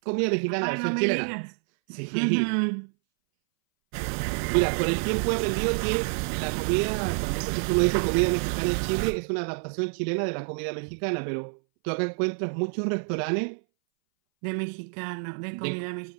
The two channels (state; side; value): silent; left; 60 dB below the other